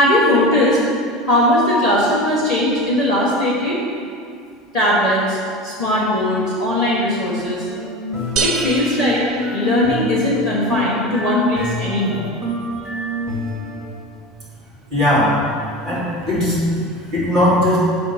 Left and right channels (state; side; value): normal; both; correlation 0.30